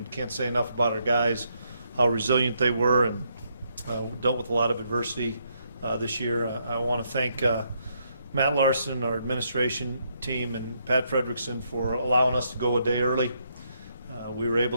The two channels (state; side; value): inverted; both; correlation -0.76